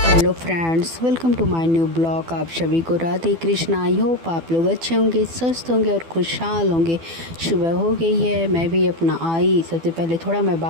Friends, welcome to my new blog. आप सभी को राधे कृष्णा। आई होप आप लोग अच्छे होंगे, स्वस्थ होंगे और खुशहाल होंगे। सुबह हो गई है, मैं भी अपना आई। सबसे पहले थोड़ा मैं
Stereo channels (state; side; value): late; left; 12 ms